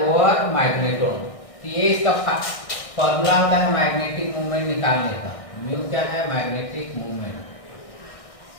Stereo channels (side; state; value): right; late; 1.6 ms